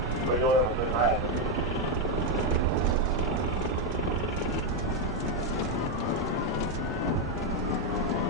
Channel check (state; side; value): normal; both; correlation 0.04